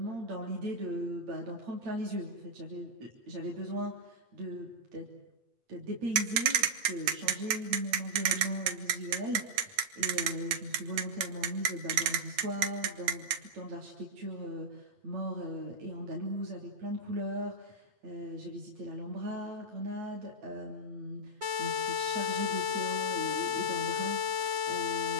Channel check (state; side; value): late; left; 9.1 ms